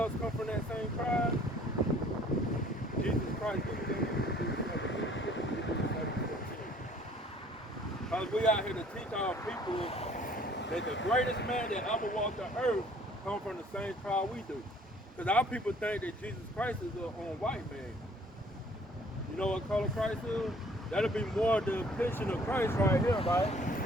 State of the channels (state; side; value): normal; both; correlation 0.56